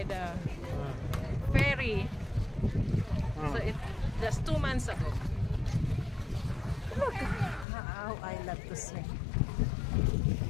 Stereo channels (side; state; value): right; drops out; at 7.7 s